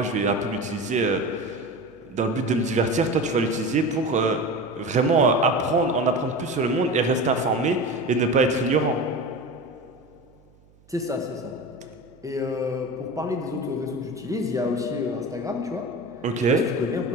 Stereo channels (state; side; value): noise; right; hum, 29 dB below the sound